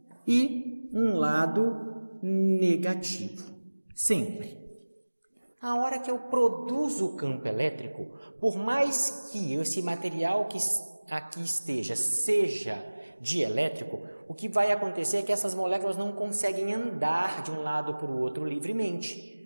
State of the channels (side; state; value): both; inverted; correlation -1.00